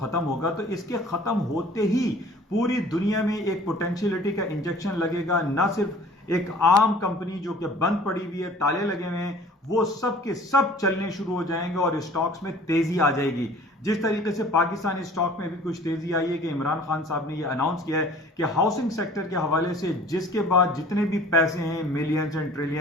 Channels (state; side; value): normal; both; correlation 0.49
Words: होगा, तो इसके खत्म होते ही पूरी दुनिया में एक पोटेंशियलिटी का इंजेक्शन लगेगा। ना सिर्फ एक आम कंपनी जो कि बंद पड़ी हुई है, ताले लगे हुए हैं, वो सब के सब चलने शुरू हो जाएंगे और स्टॉक्स में तेजी आ जाएगी। जिस तरीके से पाकिस्तानी स्टॉक में भी कुछ तेजी आई है कि इमरान खान साहब ने ये अनाउंस किया है कि हाउसिंग सेक्टर के हवाले से जिसके बाद जितने भी पैसे हैं, मिलियंस एंड